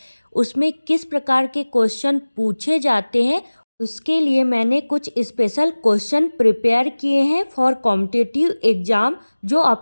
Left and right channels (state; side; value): inverted; both; correlation -1.00